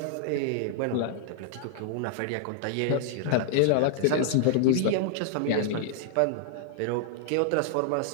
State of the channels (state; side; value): different; both; correlation -0.01